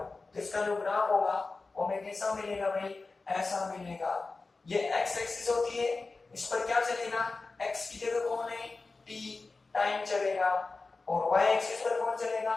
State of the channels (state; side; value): quieter; right; 3.8 dB